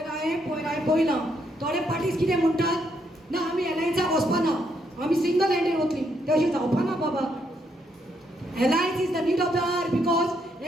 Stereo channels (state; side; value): normal; both; correlation 0.75